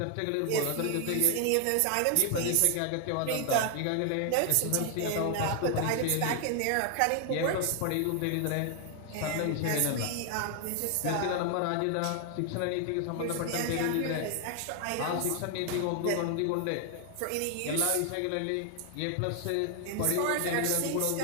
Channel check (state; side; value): different; both; correlation 0.00